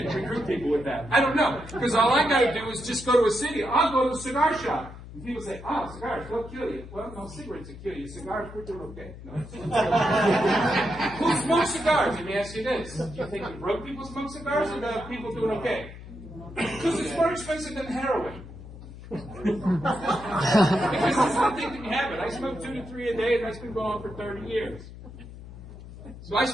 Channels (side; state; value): left; noise; hum, 14 dB below the sound